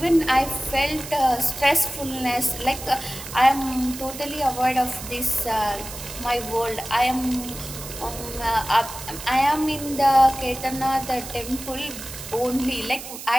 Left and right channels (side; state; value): right; noise; hiss, 11 dB below the sound